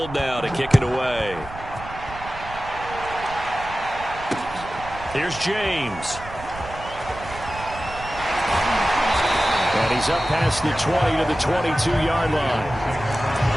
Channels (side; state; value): right; noise; rumble, 14 dB below the sound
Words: now to kick it away. Here's James. And he's up past the 20 to the 22-yard line.